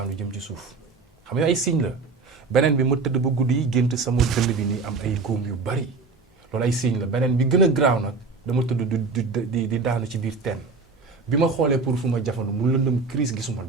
jëm ci suuf xam nga ay signes la beneen bi ma tëdd ba guddi yi gént sama dënd bi nii am ay góom yu bari. loolu ay signe la beneen bi gën a graaw nag dama tëdd di daanu ci biir teen bi ma xoolee pour fu ma jafandu mu lëndëm crise gisuma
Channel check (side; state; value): left; quieter; 4.2 dB